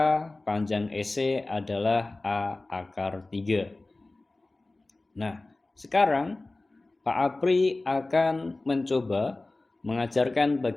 panjang EC adalah A akar 3. Nah, sekarang Pak Apri akan mencoba mengajarkan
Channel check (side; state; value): right; quieter; 3.0 dB